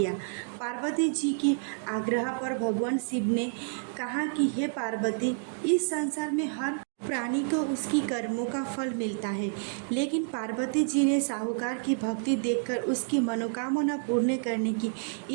पार्वती जी के आग्रह पर भगवान शिव ने कहा कि हे पार्वती, इस संसार में हर प्राणी को उसकी कर्मों का फल मिलता है, लेकिन पार्वती जी ने साहूकार की भक्ति देखकर उसकी मनोकामना पूर्ण करने की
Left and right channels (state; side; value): silent; left; digital silence